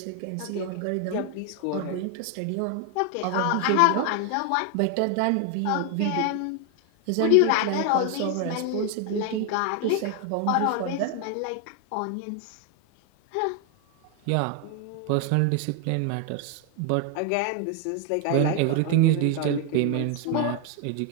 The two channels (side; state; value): both; different; correlation 0.01